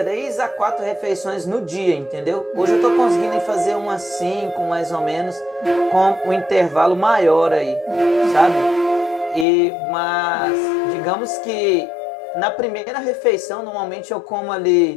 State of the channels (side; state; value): right; drops out; at 9.5 s